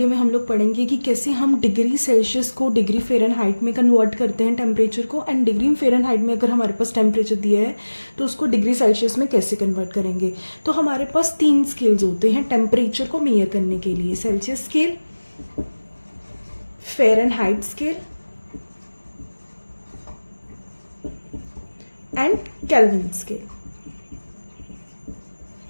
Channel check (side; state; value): both; inverted; correlation -1.00